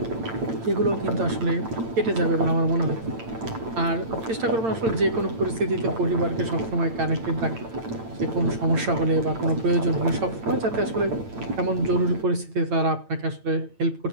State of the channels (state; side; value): late; left; 8.9 ms